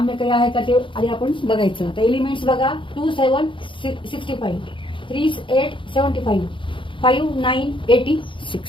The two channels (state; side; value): late; right; 0.24 ms